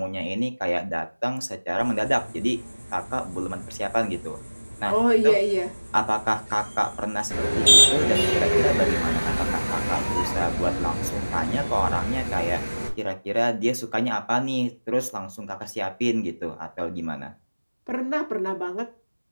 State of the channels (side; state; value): both; inverted; correlation -1.00